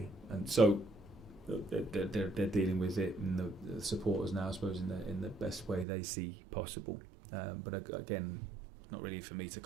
And so they're dealing with it, and the supporters now, I suppose, in the best way they see possible. But again, not really for me to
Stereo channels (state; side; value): drops out; left; at 5.9 s